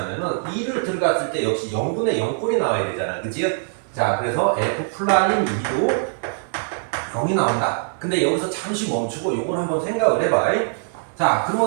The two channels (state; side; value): silent; left; 64 dB below the other